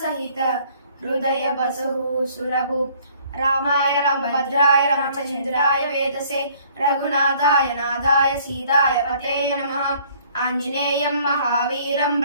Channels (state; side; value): inverted; both; correlation -0.58